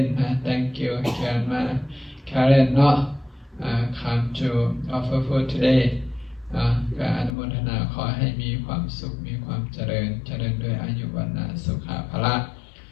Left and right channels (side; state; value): right; drops out; at 7.3 s